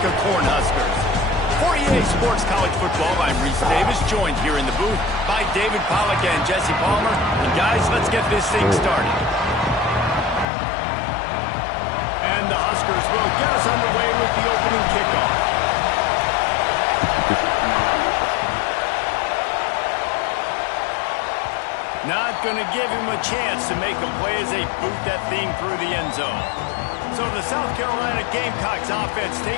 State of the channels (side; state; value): right; drops out; at 10.5 s